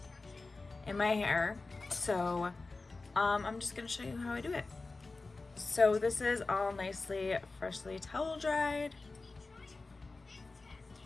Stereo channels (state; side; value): quieter; right; 3.6 dB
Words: in my hair. So I'm just gonna show you how I do it. So this is all nicely freshly towel dried.